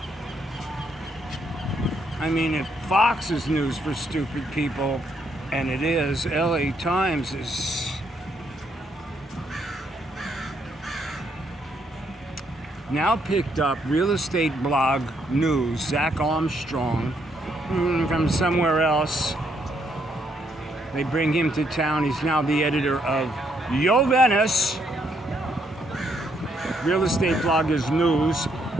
I mean, if Fox is news for stupid people, and it is, LA Times is now picked up real estate blog news, Zach Armstrong, from somewhere else. They bring him to town. He's now the editor of Yo Venice. Real estate blog is news.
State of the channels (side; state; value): both; normal; correlation 0.73